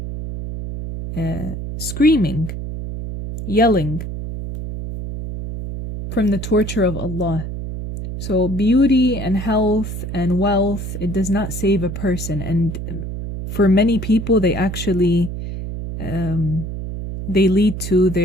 screaming, yelling from the torture of Allah. So beauty and health and wealth, it does not save a person. And for many people, they actually, they lead to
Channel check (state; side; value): noise; right; hum, 6 dB below the sound